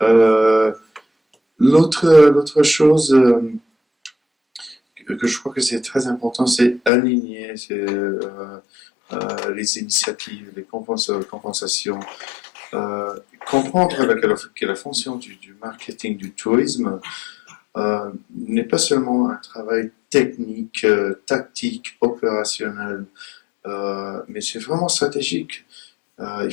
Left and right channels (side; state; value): right; drops out; at 6.9 s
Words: L'autre chose que je crois que c'est très important, c'est aligner les initiatives, les compensations, comprendre que la fonction du marketing, du tourisme, n'est pas seulement un travail technique, tactique, opérationnel, mais c'est vraiment stratégique. Il